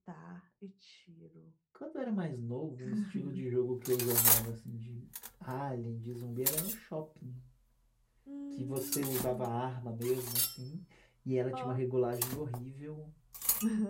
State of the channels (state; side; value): identical; both; correlation 1.00